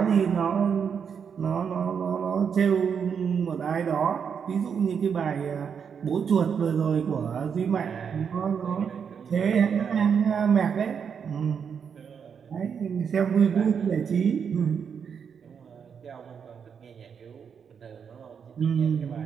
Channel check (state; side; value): quieter; left; 6.9 dB